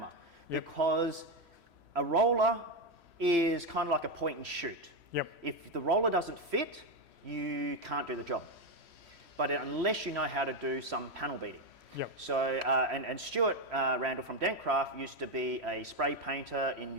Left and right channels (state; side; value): late; left; 3.1 ms